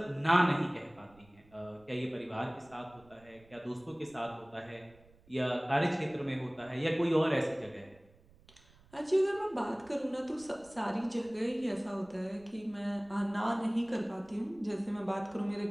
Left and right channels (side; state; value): right; noise; rumble, 27 dB below the sound